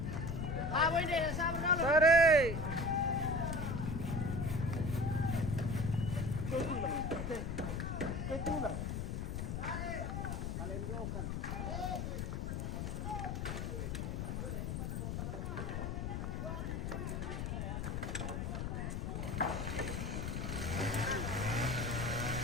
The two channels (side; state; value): left; noise; rumble, 2 dB below the sound